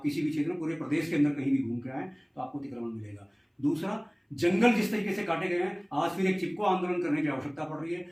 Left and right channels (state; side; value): identical; both; correlation 1.00